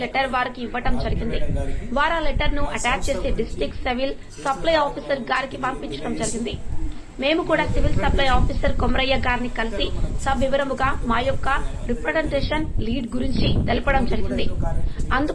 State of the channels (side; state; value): both; identical; correlation 1.00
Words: లెటర్ వారికి ఇవ్వడం జరిగింది. వారు ఆ లెటర్ ను అటాచ్ చేసి డిస్ట్రిక్ట్ సివిల్ సప్లై ఆఫీసర్ గారికి పంపించడం జరిగింది. మేము కూడా సివిల్ సప్లై ఆఫీసర్ కొమరయ్య గారిని కలిసి సవివరముగా మా యొక్క రిప్రజెంటేషన్ లీడ్ గురించి తెలపడం జరిగింది.